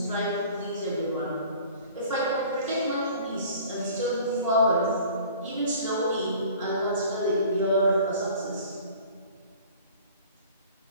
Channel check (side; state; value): both; inverted; correlation -0.47